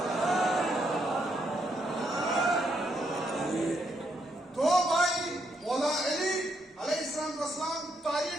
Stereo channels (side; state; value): both; normal; correlation 0.76